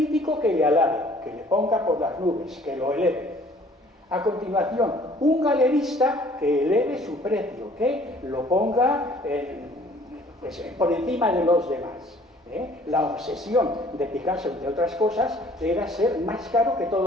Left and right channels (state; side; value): normal; both; correlation 0.56